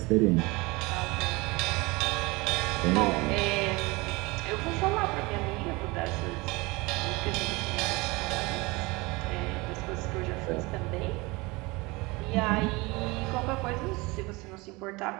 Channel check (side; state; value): left; quieter; 24.1 dB